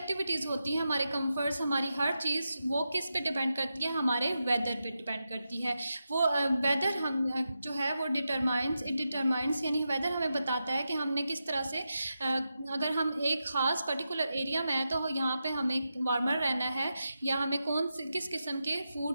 होती हैं, हमारे कंफर्ट्स, हमारी हर चीज़ वो किस पे डिपेंड करती है, हमारे वेदर पे डिपेंड करती है. वो वेदर हम जो है वो डिटरमाइंस यानी वेदर हमें बताता है कि हमने किस तरह से अगर हम एक ख़ास पर्टिकुलर एरिया में हैं तो यहाँ पे हमें वार्मर रहना है या हमें किस किस्म के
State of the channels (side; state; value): both; inverted; correlation -0.89